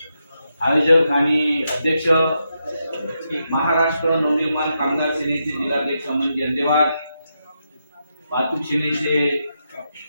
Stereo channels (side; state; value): both; inverted; correlation -0.84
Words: आयोजक आणि अध्यक्ष महाराष्ट्र नवनिर्माण कामगार सेनेचे जिल्हाध्यक्ष अमनजी अंदेवार, वाहतूक सेनेचे